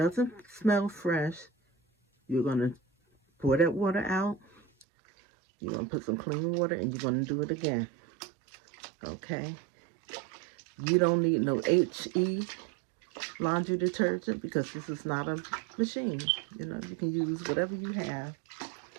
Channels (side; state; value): left; drops out; at 4.9 s